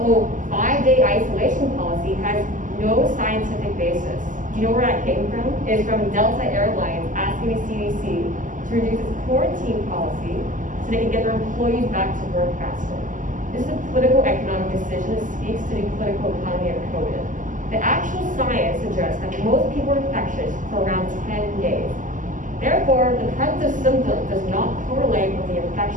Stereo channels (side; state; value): left; late; 0.38 ms